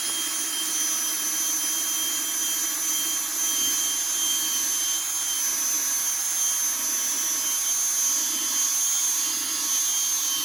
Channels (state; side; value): quieter; left; 3.2 dB